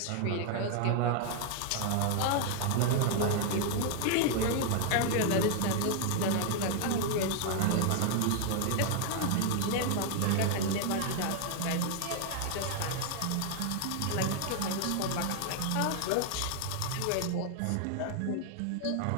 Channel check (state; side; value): different; both; correlation 0.00